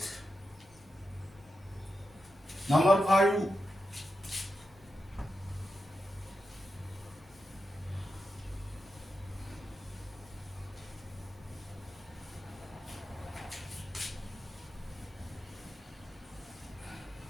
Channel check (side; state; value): both; normal; correlation 0.89